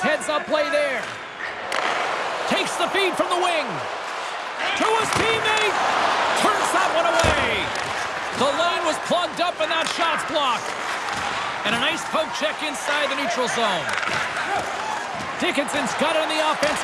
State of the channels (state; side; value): identical; both; correlation 1.00